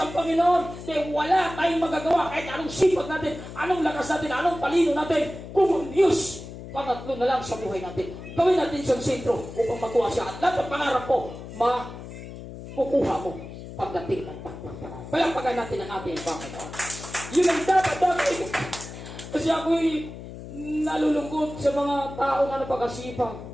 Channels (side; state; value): left; noise; hum, 12 dB below the sound